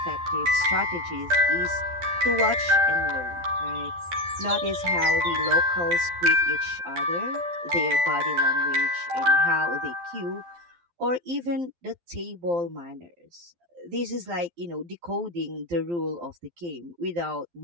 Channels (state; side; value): late; left; 12 ms